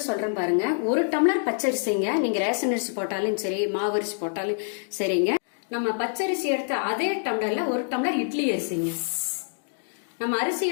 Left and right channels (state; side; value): silent; right; digital silence